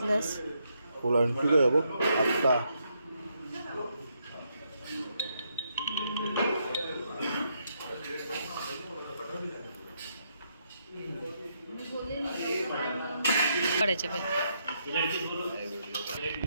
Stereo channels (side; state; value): both; inverted; correlation -0.77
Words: फुलांची काय बघ आत्ता काढायचे